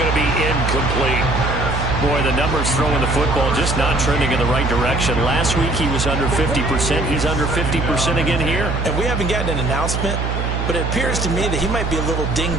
to be incomplete. Boy, the numbers throwing the football just not trending in the right direction. Last week he was under 50%. He's under 50% again here. And we haven't gotten an announcement but it appears to me that he might be a little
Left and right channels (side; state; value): right; noise; hum, 1 dB below the sound